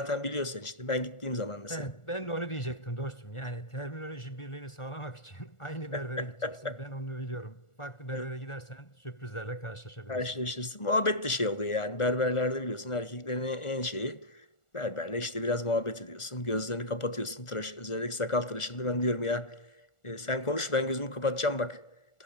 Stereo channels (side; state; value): right; late; 1.4 ms